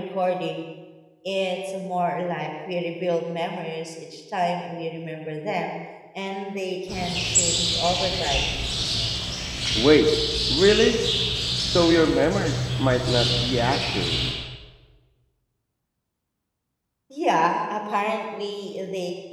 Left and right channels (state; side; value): identical; both; correlation 1.00